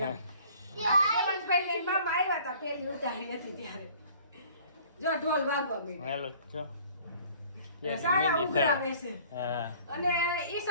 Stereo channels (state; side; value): inverted; both; correlation -0.52